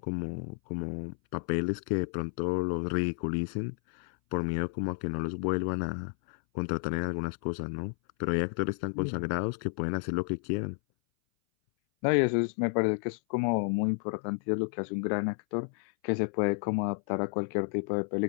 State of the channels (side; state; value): right; silent; 57 dB below the other